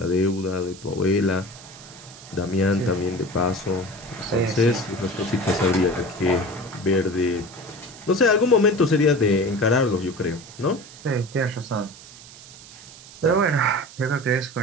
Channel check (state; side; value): noise; right; hiss, 18 dB below the sound